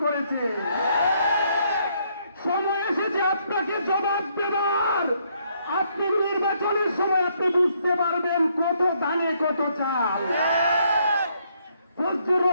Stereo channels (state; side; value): inverted; both; correlation -0.71